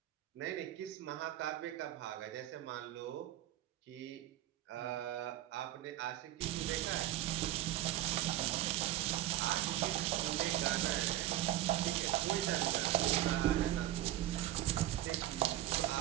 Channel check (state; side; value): quieter; left; 13.9 dB